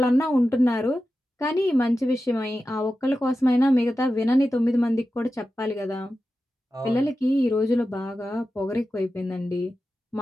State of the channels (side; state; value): both; normal; correlation 0.92